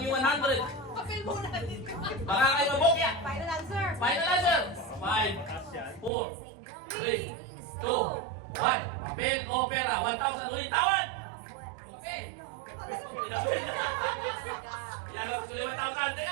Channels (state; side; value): drops out; left; at 6.1 s